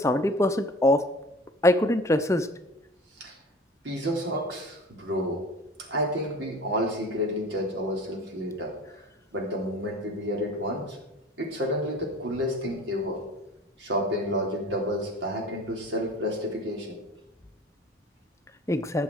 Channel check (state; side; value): normal; both; correlation 0.41